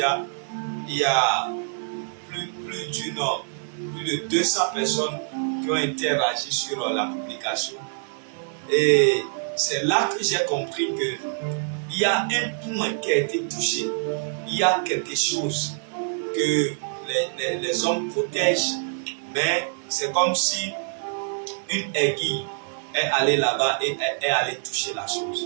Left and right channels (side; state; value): left; silent; 55 dB below the other